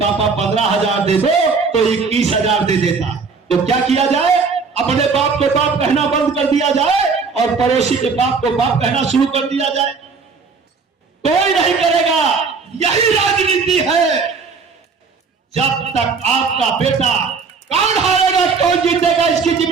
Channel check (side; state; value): left; quieter; 4.9 dB